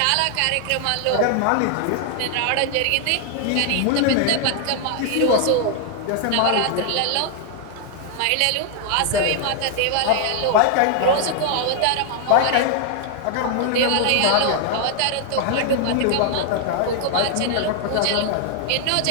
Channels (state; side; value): different; both; correlation 0.00